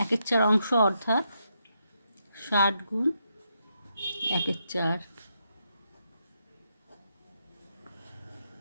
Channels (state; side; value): inverted; both; correlation -0.81